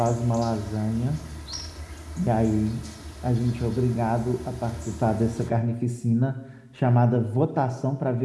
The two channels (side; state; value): both; identical; correlation 1.00